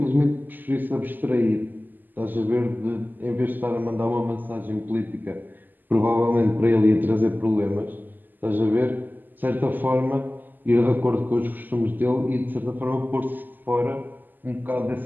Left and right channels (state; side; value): late; left; 0.087 ms